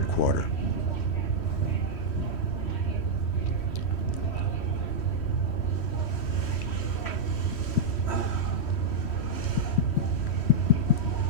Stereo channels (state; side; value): late; right; 3.1 ms